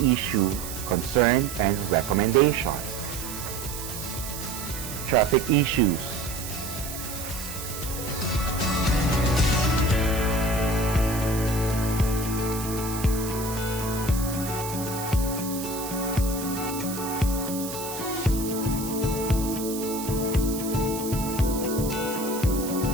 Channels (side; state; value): right; noise; hiss, 9 dB below the sound